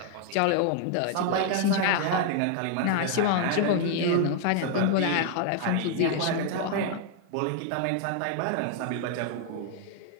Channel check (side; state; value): both; different; correlation 0.00